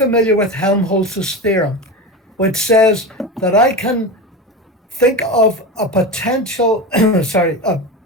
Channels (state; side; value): normal; both; correlation 0.23